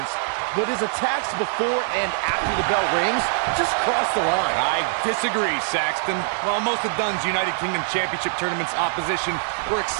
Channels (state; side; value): silent; left; 63 dB below the other